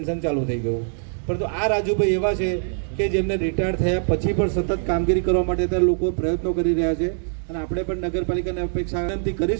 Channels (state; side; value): silent; left; digital silence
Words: ચાલુ થઈ ગયું. પરંતુ આ રાજુભાઈ એવા છે કે જેમને રિટાયર થયા પછી પણ સતત કામગીરી કરવા માટે ત્યાં લોકો પ્રયત્નો કરી રહ્યા છે. અને આપણે પણ નગરપાલિકાને અપેક્ષા વિનંતી